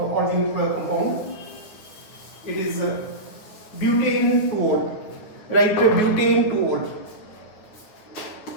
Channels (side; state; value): right; late; 9.5 ms